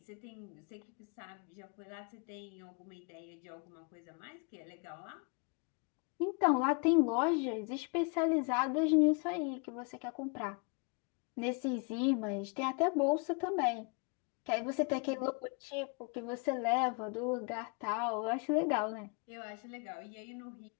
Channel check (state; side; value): quieter; right; 35.0 dB